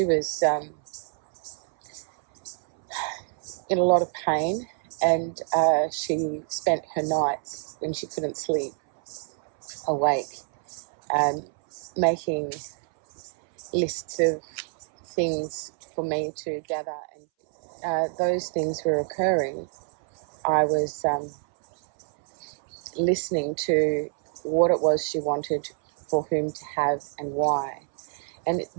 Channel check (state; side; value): silent; left; 60 dB below the other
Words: was in a lot of pain, and she spent her nights when she couldn't sleep awake, making lists of things for me to gather. And those things were occurring. I was listening to what it was she wanted, for whom to have and why. And